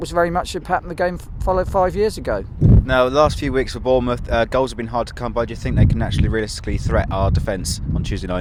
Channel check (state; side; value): identical; both; correlation 1.00